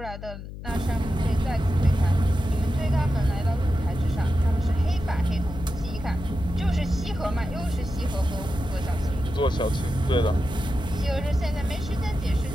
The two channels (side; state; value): left; noise; hum, 11 dB below the sound